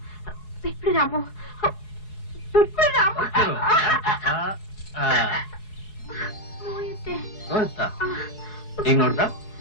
ಬಿಟ್ಬಿಡು ರಾಮು, ಬಿಟ್ಬಿಡು ರಾಮು. ನೋಯುತ್ತೆ. ನೋಡ್ತಾ ಈಗ ನೋಡ್ದ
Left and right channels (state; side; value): late; right; 4.7 ms